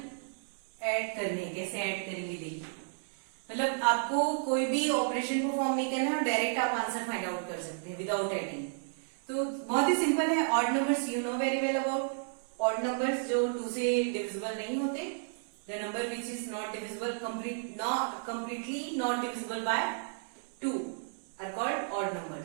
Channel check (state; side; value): silent; left; digital silence